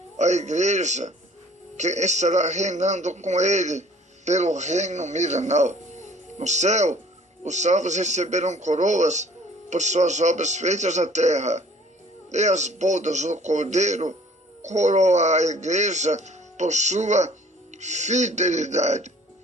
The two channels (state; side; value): normal; both; correlation 0.54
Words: a igreja que estará reinando com ele pelo reino milenar. No céu, os salvos receberão coroas por suas obras feitas na terra, e as bodas do Cordeiro coroa a igreja por sua fidelidade.